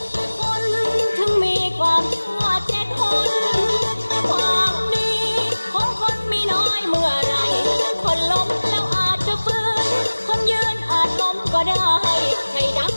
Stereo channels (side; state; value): both; inverted; correlation -1.00